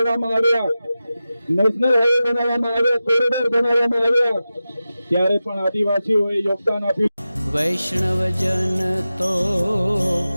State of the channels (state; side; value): inverted; both; correlation -0.94